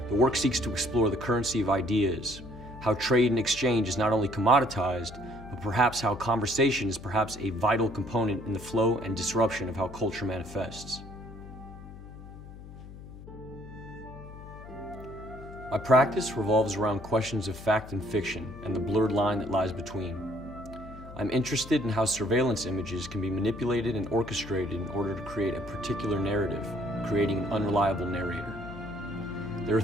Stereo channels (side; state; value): left; noise; hum, 15 dB below the sound